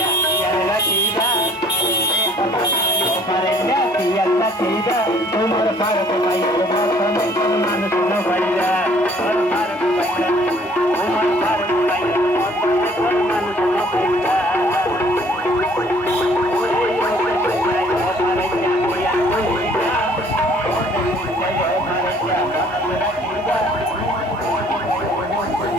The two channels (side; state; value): both; normal; correlation 0.57